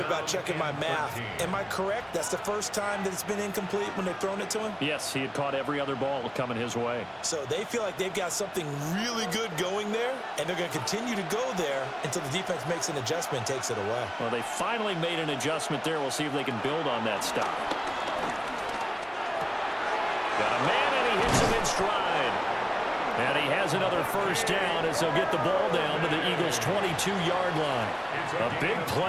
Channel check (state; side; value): identical; both; correlation 1.00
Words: about checking my math. Am I correct? That's the first time that it's been incomplete when they've thrown it to him? Yes, he had caught every other ball coming his way. So they feel like they've got something really good going there, and they're going to continue to go there until the defense makes an adjustment and takes it away. Well, they finally made an adjustment there. We'll see if they can build on that stop. Got a man, and he hits him in stride. And he has another first down as they'll get the ball down to the Eagles' 22-yard line. A big